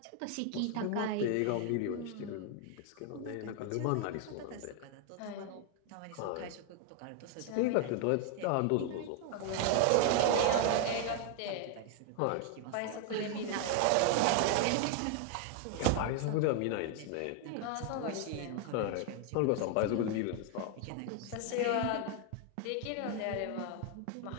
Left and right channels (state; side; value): different; both; correlation 0.01